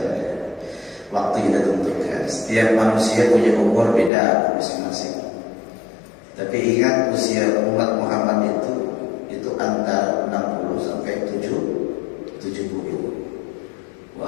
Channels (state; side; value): drops out; right; at 4.1 s